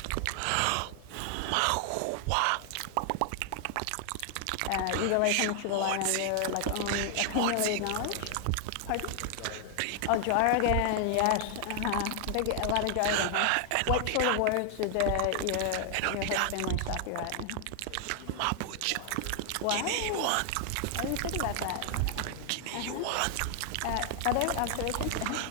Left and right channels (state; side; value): different; both; correlation 0.00